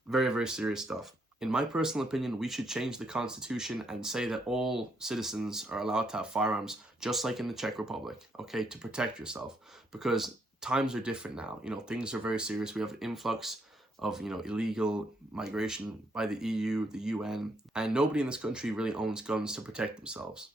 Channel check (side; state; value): both; normal; correlation 0.74